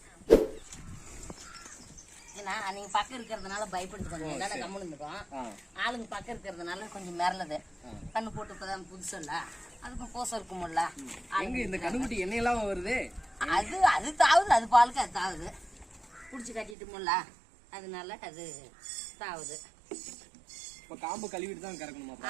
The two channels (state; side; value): drops out; left; at 16.8 s